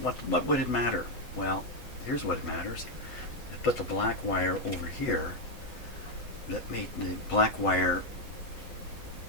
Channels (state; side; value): late; right; 8.0 ms